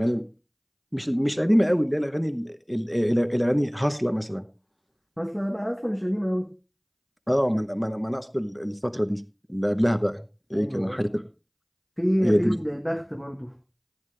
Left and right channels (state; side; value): identical; both; correlation 1.00